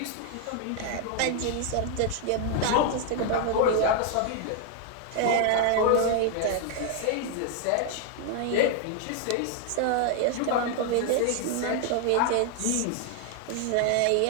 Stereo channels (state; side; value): different; both; correlation 0.00